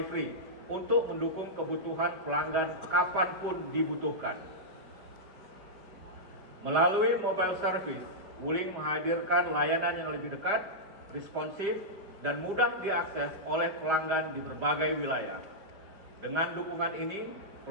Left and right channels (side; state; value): left; late; 5.0 ms